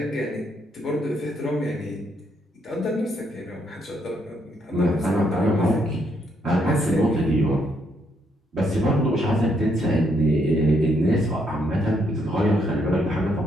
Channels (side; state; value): both; normal; correlation 0.74